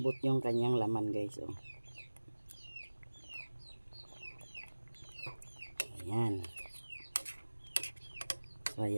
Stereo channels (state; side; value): inverted; both; correlation -1.00